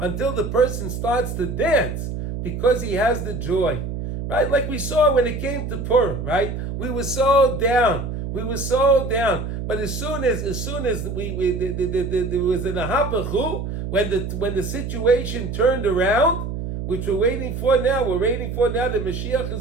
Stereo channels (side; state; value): right; noise; hum, 5 dB below the sound